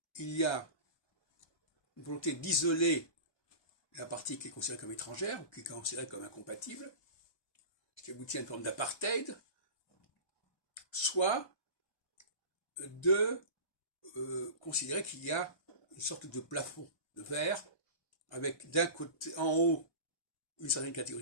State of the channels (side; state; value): right; late; 1.2 ms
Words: il y a une volonté d'isoler la partie qui est considérée comme étrangère, ou qui est considérée comme incompatible, ce qui aboutit à une forme d'apartheid, soit de considérer qu'il y a une sorte de plafond de verre, avec d'un côté, en haut, une certaine catégorie